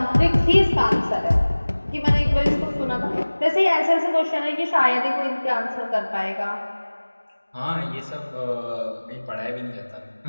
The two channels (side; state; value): both; inverted; correlation -1.00